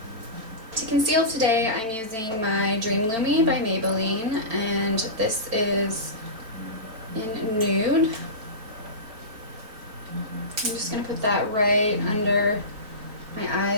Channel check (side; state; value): left; late; 4.4 ms